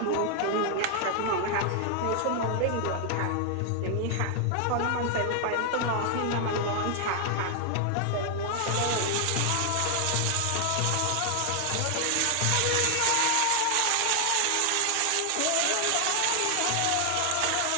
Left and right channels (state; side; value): different; both; correlation 0.00